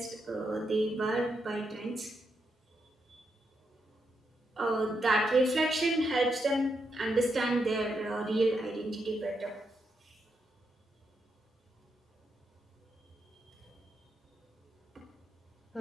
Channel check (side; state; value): both; normal; correlation 0.82